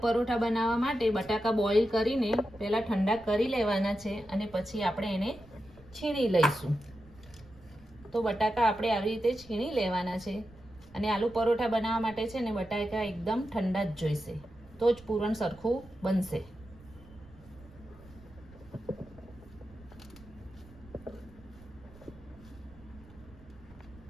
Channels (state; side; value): noise; right; rumble, 22 dB below the sound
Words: પરોઠા બનાવવા માટે બટાકા બોઇલ કરીને પહેલા ઠંડા કરી લેવાના છે અને પછી આપણે એને છીણી લઈશું। તો બટાકા આપણે આવી રીતે છીણી લેવાના છે અને આલુ પરોઠા બનાવવા માટે છે ને બટાકા એકદમ ઠંડા જ જોઈશે, તો જ પૂરણ સરખું બનશે।